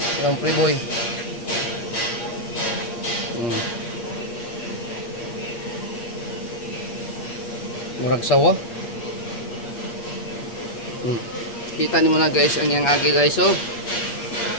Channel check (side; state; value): right; late; 8.5 ms